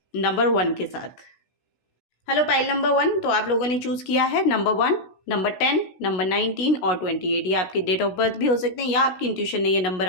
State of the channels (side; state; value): right; late; 16 ms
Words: नंबर 1 के साथ। हेलो पाइल नंबर 1, तो आप लोगों ने चूज़ किया है नंबर 1, नंबर 10, नंबर 19 और 28। ये आपके डेट ऑफ बर्थ भी हो सकते हैं या आपकी इंट्यूशन ने ये नंबर